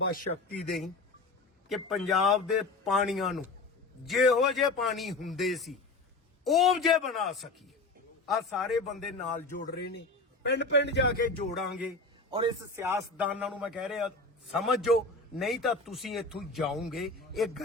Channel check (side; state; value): right; quieter; 3.5 dB